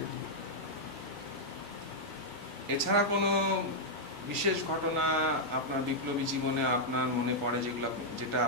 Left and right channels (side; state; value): both; normal; correlation -0.06